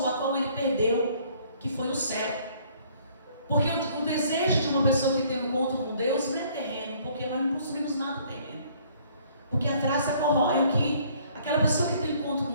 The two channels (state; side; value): inverted; both; correlation -0.60